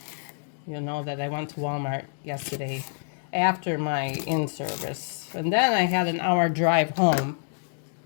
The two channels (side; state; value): right; silent; 60 dB below the other